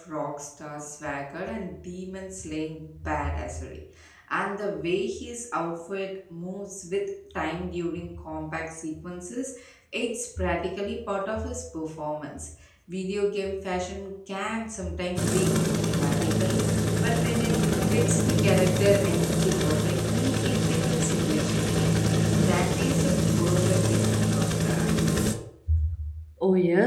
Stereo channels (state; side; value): identical; both; correlation 1.00